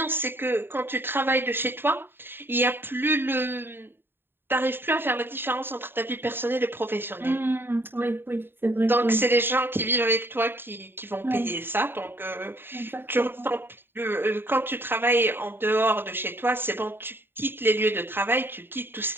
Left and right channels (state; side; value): late; left; 0.10 ms